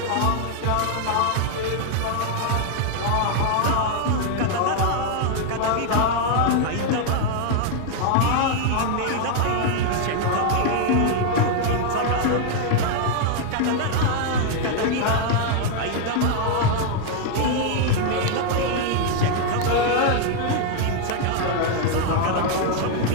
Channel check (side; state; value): both; different; correlation 0.00